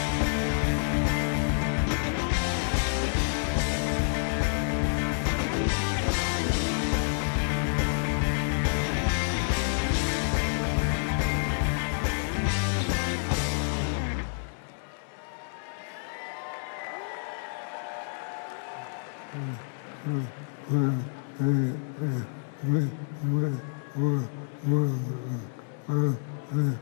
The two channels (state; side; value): silent; right; 59 dB below the other